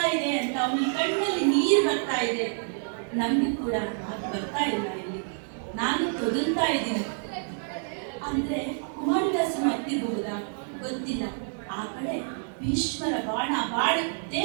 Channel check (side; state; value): left; silent; 59 dB below the other